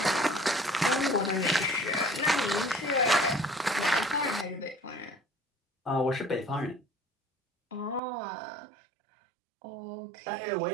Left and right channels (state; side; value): drops out; left; at 8.0 s